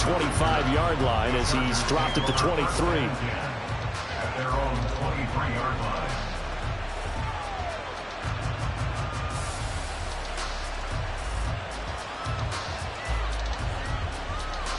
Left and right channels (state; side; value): identical; both; correlation 1.00